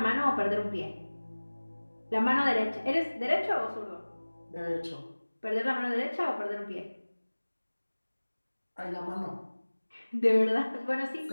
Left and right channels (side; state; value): both; inverted; correlation -1.00